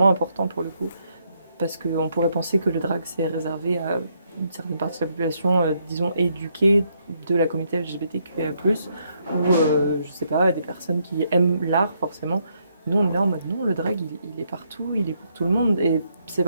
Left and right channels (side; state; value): both; inverted; correlation -0.74